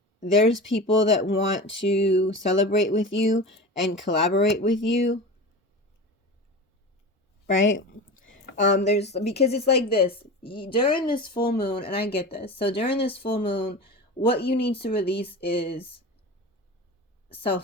there's people that want to celebrate with you and collaborate with you, right? Because it's like this during this full moon, and I get this. So during this full moon, what you need to release is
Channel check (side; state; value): both; normal; correlation 0.30